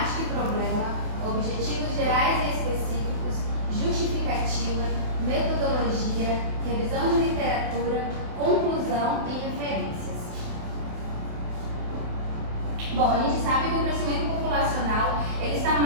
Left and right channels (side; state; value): left; late; 28 ms